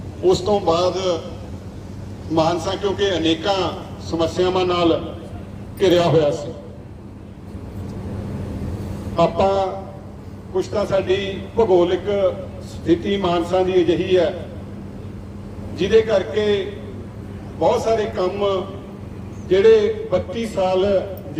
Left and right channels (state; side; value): identical; both; correlation 1.00